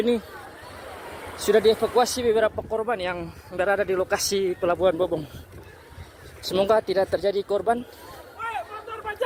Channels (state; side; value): identical; both; correlation 1.00